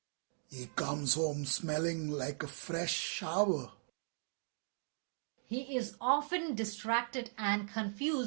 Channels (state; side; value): silent; left; digital silence